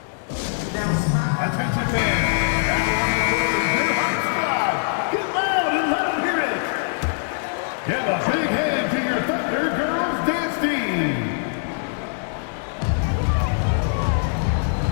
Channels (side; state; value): right; silent; digital silence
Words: Attention fans. Get loud and let them hear it. Give a big hand to your Thunder Girls dance team.